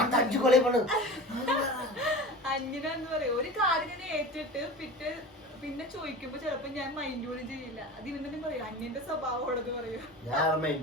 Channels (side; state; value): both; normal; correlation 0.34